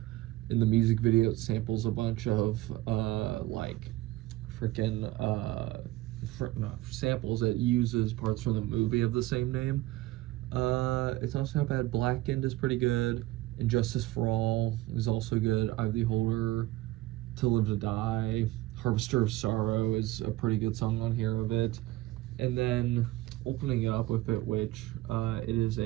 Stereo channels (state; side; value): quieter; left; 17.4 dB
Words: in the music video it samples a bunch of like freaking samples. It uses parts from the movie of the same name. It's also not bad. Blackened is pretty good. And Justice for All is also good. Eye of the Beholder, To Live to Die, Harvester of Sorrow is a pretty good song on here of it. And then opening it up with it, which it is